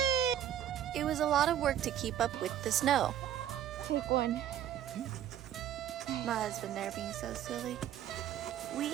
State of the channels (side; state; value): left; quieter; 10.9 dB